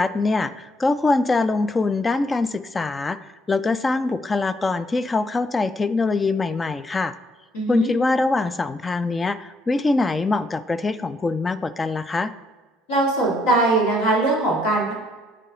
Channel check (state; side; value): normal; both; correlation 0.73